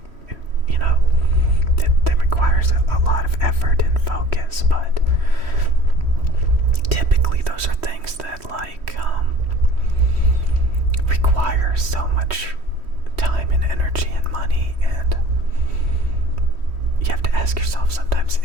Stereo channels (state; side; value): late; left; 3.1 ms